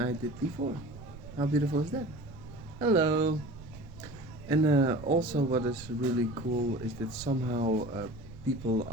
did before. How beautiful is that? Hello. And also what is really cool is that somehow people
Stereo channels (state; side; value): noise; right; rumble, 16 dB below the sound